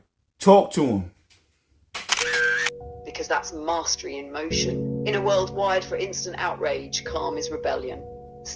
talk to him. Because that's mastery in motion. In a world wired for instant outrage, calm is rebellion.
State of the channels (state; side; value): identical; both; correlation 1.00